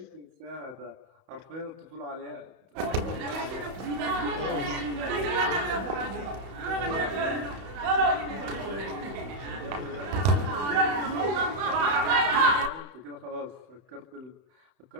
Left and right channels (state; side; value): late; left; 31 ms